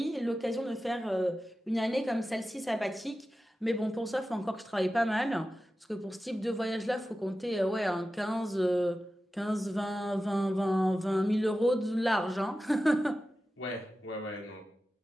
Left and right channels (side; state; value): both; normal; correlation 0.94